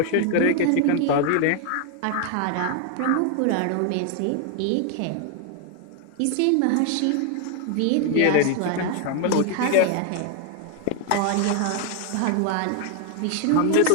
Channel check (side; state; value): both; different; correlation 0.00